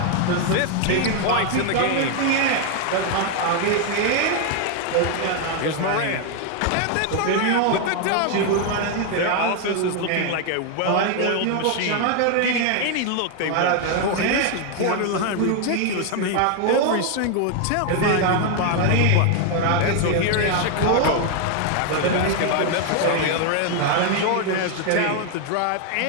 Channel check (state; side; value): different; both; correlation 0.01